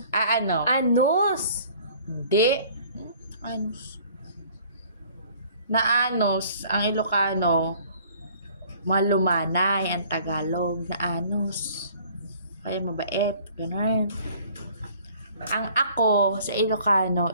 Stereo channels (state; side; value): inverted; both; correlation -0.54